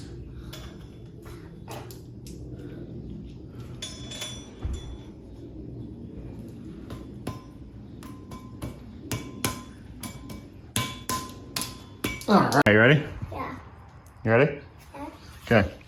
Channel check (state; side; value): identical; both; correlation 1.00